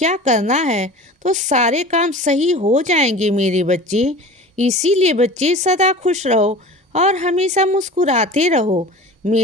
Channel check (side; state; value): both; normal; correlation 0.38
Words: करना है, तो सारे काम सही हो जाएंगे मेरे बच्चे। इसीलिए बच्चे, सदा खुश रहो और हमेशा मुस्कुराते रहो।